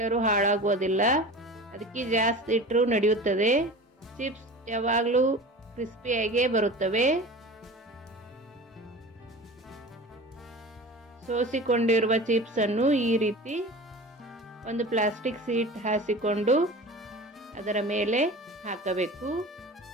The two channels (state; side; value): normal; both; correlation 0.36